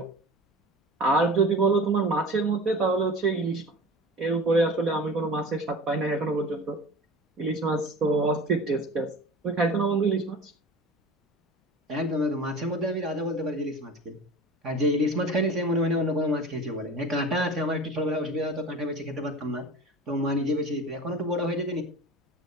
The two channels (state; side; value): normal; both; correlation 0.36